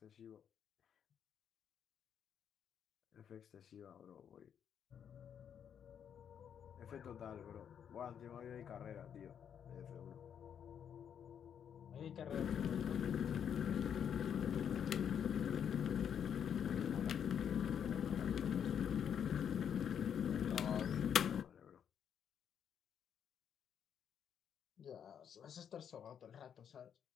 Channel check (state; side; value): quieter; right; 8.3 dB